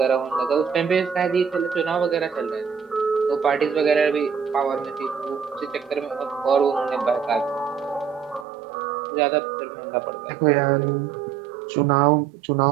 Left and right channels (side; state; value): left; drops out; at 8.5 s